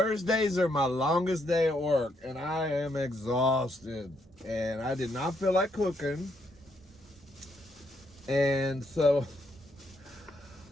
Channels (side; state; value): both; normal; correlation 0.75